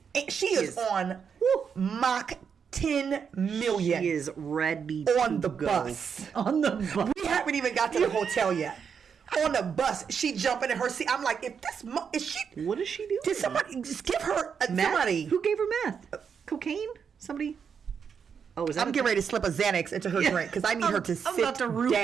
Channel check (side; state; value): left; quieter; 6.8 dB